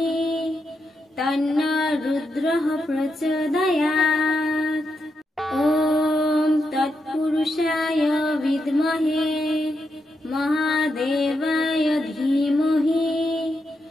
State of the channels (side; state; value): both; normal; correlation 0.84